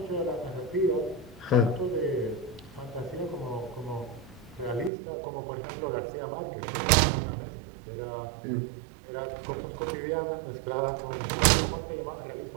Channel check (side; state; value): left; drops out; at 4.9 s